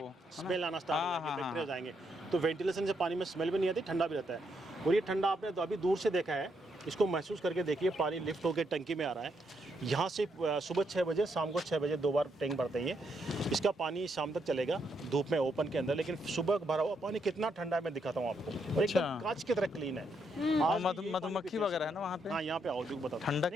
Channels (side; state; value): both; normal; correlation 0.77